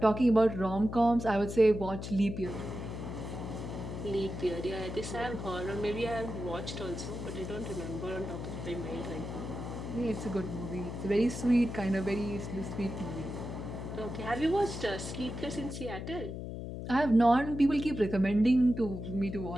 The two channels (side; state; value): left; noise; hum, 7 dB below the sound